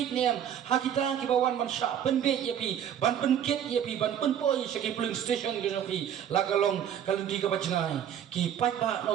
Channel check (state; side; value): quieter; left; 9.4 dB